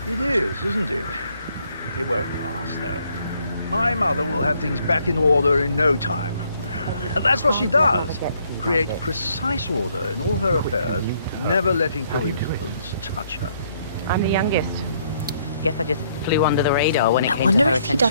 It is, isn't it? It won't last, though. My mother will have things back in order in no time. That's what she does. Create precise order in all her affairs, never letting coincidence touch her. I'm the youngest. Guess I just flew under the radar when it I came to wonder her if he attention.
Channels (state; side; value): inverted; both; correlation -0.69